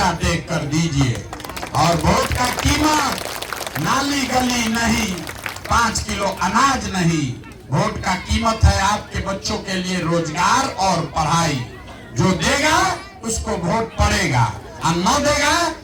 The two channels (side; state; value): both; identical; correlation 1.00